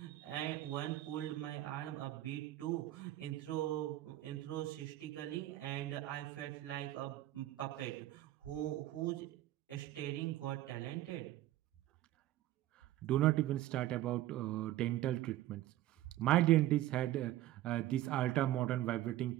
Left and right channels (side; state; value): left; quieter; 14.7 dB